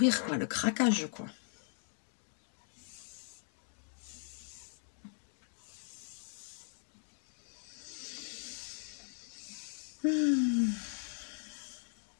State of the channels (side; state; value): right; silent; 52 dB below the other